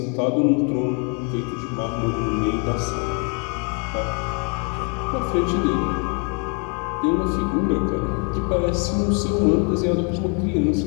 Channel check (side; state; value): right; quieter; 35.5 dB